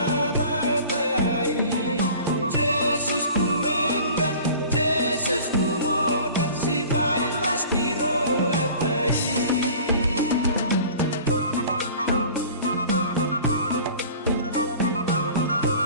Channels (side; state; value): both; inverted; correlation -0.44